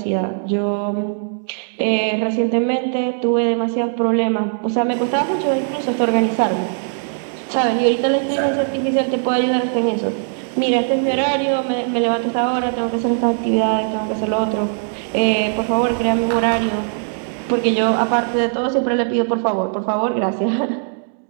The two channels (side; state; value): left; silent; digital silence